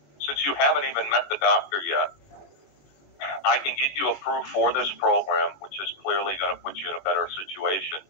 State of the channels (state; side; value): late; right; 21 ms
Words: Since you haven't even met the doctor yet, I can get you approved for this program, which is clearly going to put you in a better situation.